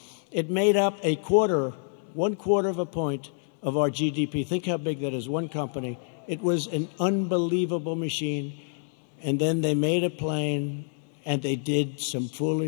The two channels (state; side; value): silent; right; digital silence